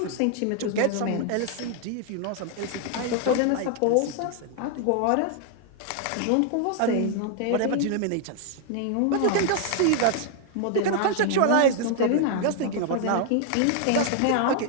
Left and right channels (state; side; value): different; both; correlation 0.00